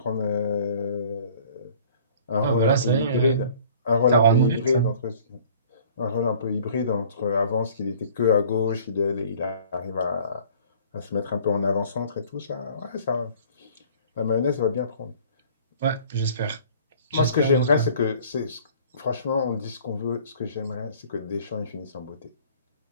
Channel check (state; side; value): inverted; both; correlation -0.52